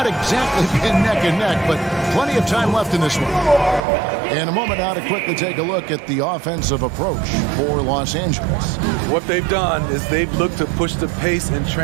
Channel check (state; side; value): drops out; left; at 3.8 s